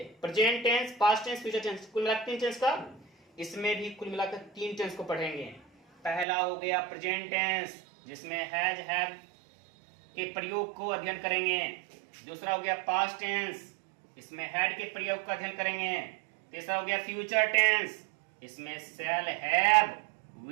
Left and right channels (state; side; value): drops out; left; at 6.2 s